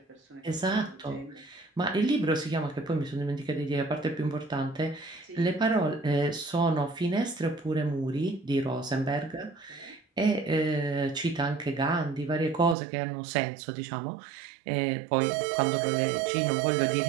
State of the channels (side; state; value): left; drops out; at 12.8 s